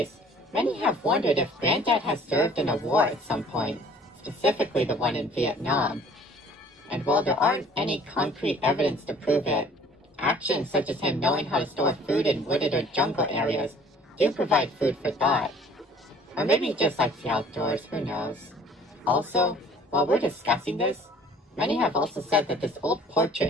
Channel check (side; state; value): both; normal; correlation 0.52